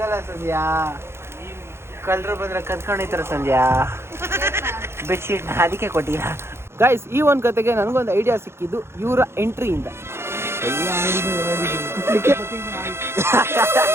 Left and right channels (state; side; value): late; left; 0.12 ms